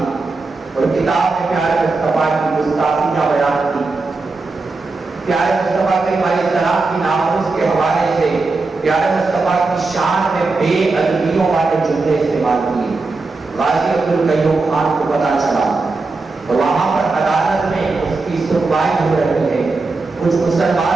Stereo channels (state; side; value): quieter; left; 3.7 dB